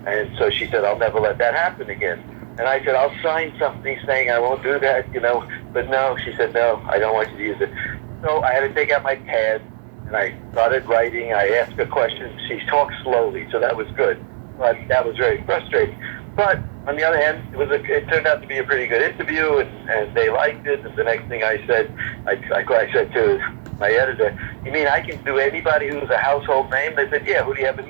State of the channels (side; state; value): left; silent; 66 dB below the other